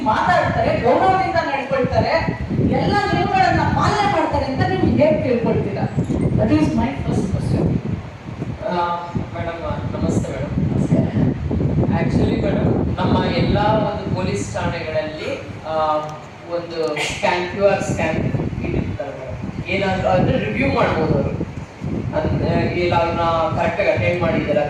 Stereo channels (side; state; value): both; identical; correlation 1.00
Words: ಮಾತಾಡ್ತಾರೆ, ಗೌರವದಿಂದ ನಡ್ಕೊಳ್ತಾರೆ, ಎಲ್ಲ ನಿಯಮಗಳನ್ನ ಪಾಲನೆ ಮಾಡ್ತಾರೆ ಅಂತ ನೀವು ಹೇಗೆ ತಿಳ್ಕೊಳ್ತೀರಾ? That is my first question. Madam ನಮಸ್ತೆ ಮೇಡಮ್. ಆಕ್ಚುಲಿ ಮೇಡಮ್ ನಮ್ಮ ಎಲ್ಲ ಒಂದು ಪೊಲೀಸ್ ಠಾಣೆಗಳಲ್ಲಿ ಒಂದು QR ಸ್ಕ್ಯಾನ್ ಇಟ್ಟಿರ್ತಾರೆ ಮೇಡಮ್. ಏನಾದರೂ ಅಂದರೆ ರಿವ್ಯೂ ಮಾಡ್ಬೋದು ಅವರು, ಇಲ್ಲ ಅವ್ರನ್ನ ಕರೆಕ್ಟಾಗಿ ಅಟೆಂಡ್ ಮಾಡಿದಾರ